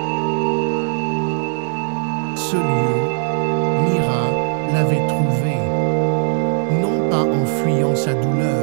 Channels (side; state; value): left; silent; digital silence